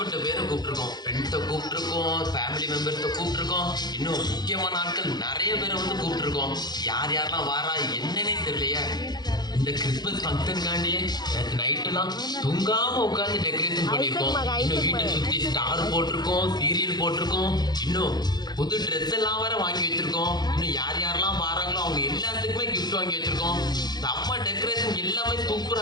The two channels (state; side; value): late; right; 0.20 ms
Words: பேரை கூப்பிட்டுருக்கோம். ஃப்ரெண்ட்ஸை கூப்பிட்டுருக்கோம், ஃபேமிலி மெம்பர்ஸை கூப்பிட்டுருக்கோம், இன்னும் முக்கியமான ஆட்கள் நிறைய பேரை வந்து கூப்பிட்டுருக்கோம். யார் யாரெல்லாம் வாரா என்னன்னே தெரியலையே. இந்த கிறிஸ்மஸ் ஃபங்க்ஷனுக்காண்டியே நேற்று நைட்டெல்லாம் தூங்காம உட்காந்து டெக்கரேஷன் பண்ணியிருக்கோம். இன்னும் வீட்டை சுற்றி ஸ்டார் போட்டிருக்கோம், சீரியல் போட்டிருக்கோம், இன்னும் புது ட்ரெஸ் எல்லாம் வேற வாங்கி வச்சிருக்கோம். இன்னும் யார் யாரெல்லாம் வராங்களோ அவங்க எல்லாத்துக்குமே கிஃப்ட் வாங்கி வச்சிருக்கோம். நம்ம டெக்கரேஷன் எல்லாமே சூப்பரா